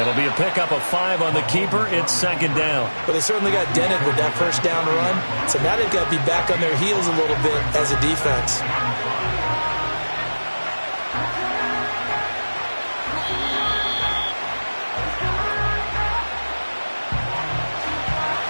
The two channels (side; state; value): both; inverted; correlation -1.00